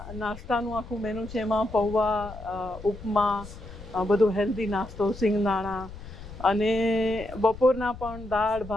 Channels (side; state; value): left; noise; rumble, 14 dB below the sound